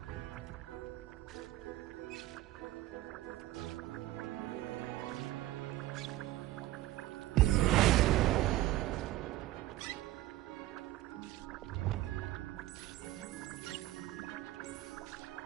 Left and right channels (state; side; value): quieter; left; 15.4 dB